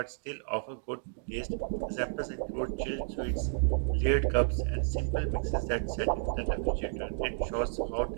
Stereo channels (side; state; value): left; silent; digital silence